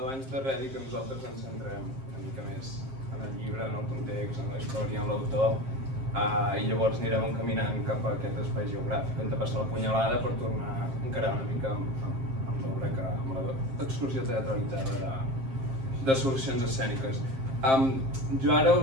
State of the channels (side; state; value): left; late; 7.5 ms